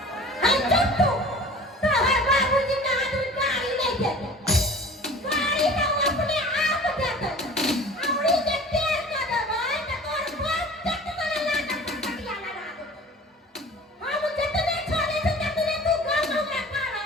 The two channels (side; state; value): both; normal; correlation 0.43